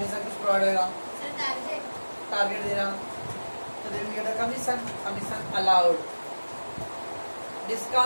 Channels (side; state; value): both; inverted; correlation -1.00